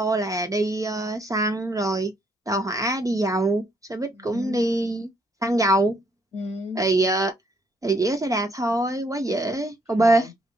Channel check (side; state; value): both; normal; correlation 0.70